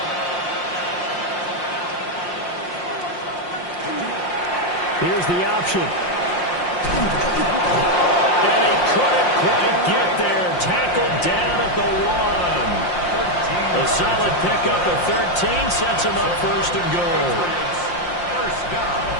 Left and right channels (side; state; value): right; late; 5.7 ms